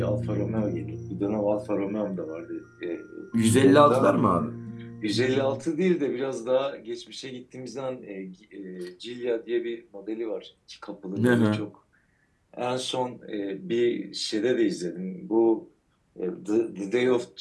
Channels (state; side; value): identical; both; correlation 1.00